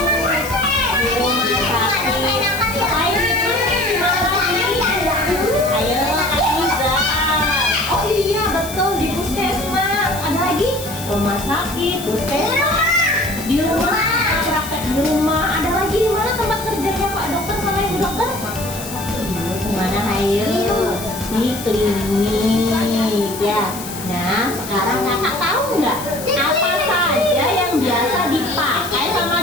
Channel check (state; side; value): noise; left; hiss, 11 dB below the sound